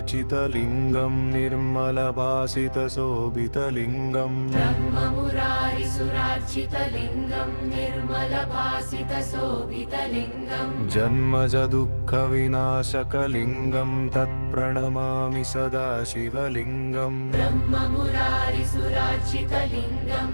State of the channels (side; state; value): both; inverted; correlation -1.00